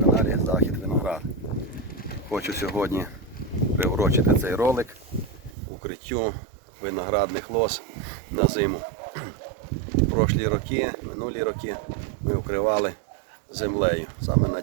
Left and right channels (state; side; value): drops out; left; at 5.6 s